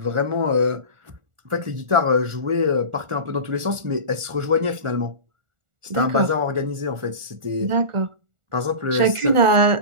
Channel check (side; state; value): left; late; 1.4 ms